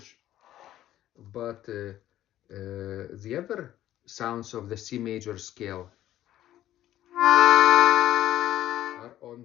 but the other sounds of the C major scale are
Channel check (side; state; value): right; quieter; 13.1 dB